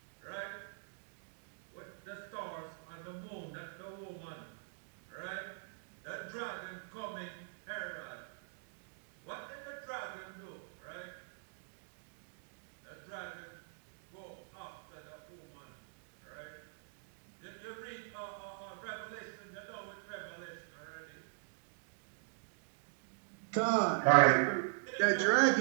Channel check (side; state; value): left; silent; digital silence